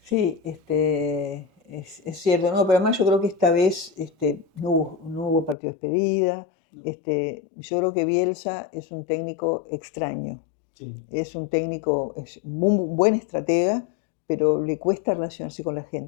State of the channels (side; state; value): right; drops out; at 5.6 s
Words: sí, es cierto, no, pero además yo creo que esta vez no hubo partido de despedida. no, Yo creo que Bielsa es un técnico extraño. sí. Es un técnico, es un buen estratega, pero le cuesta relacionarse con la